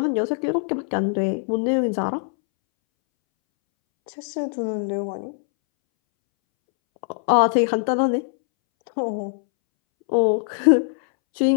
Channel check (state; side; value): silent; right; 64 dB below the other